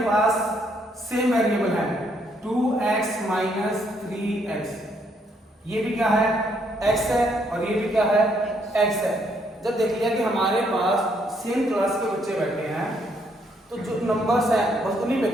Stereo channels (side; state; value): both; normal; correlation 0.71